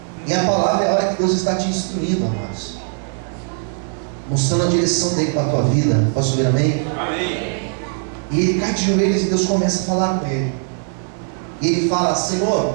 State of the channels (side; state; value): left; silent; 56 dB below the other